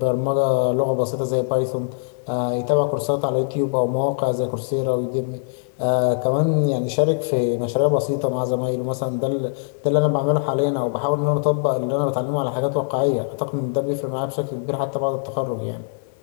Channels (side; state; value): right; silent; 56 dB below the other